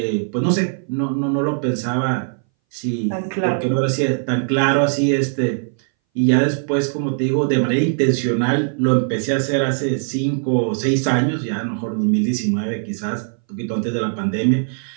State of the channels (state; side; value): silent; left; 62 dB below the other